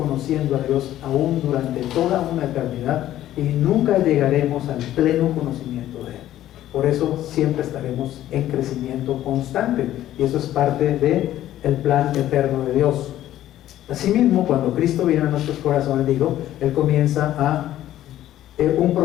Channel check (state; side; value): quieter; right; 13.1 dB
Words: a Dios aún durante toda una eternidad y nunca llegaremos al pleno conocimiento de Él. Por eso siempre estaremos en crecimiento constante y eso es parte del plan eterno de Dios. Asimismo, cuando Cristo viene a nuestros corazones, Él comienza a un